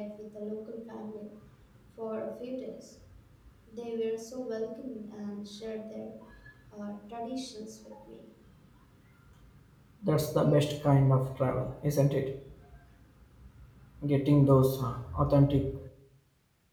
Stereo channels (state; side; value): identical; both; correlation 1.00